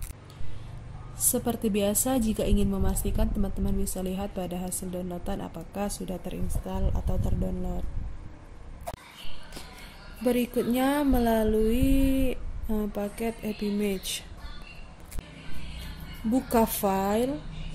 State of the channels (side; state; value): both; identical; correlation 1.00